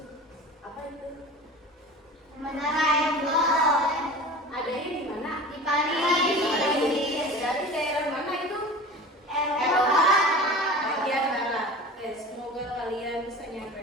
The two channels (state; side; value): normal; both; correlation 0.37